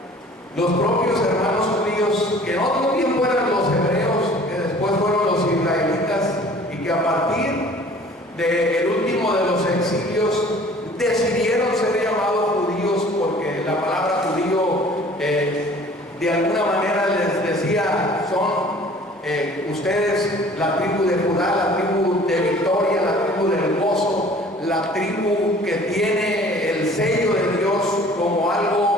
los propios hermanos judíos, que en otro tiempo eran los hebreos, que después fueron los israelitas, y que a partir del último de los exilios decidieron ser llamados judíos, porque la palabra judío de alguna manera les decía, son ustedes la tribu de Judá, la tribu de victoria, la tribu del gozo, la tribu que tiene el sello de Dios como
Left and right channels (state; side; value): normal; both; correlation 0.50